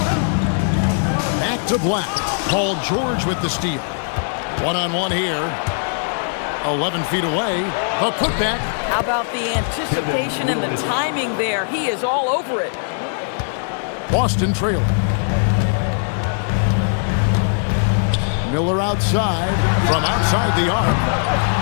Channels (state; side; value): silent; right; digital silence